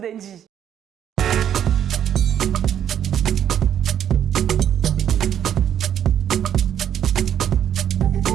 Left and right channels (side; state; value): left; quieter; 9.8 dB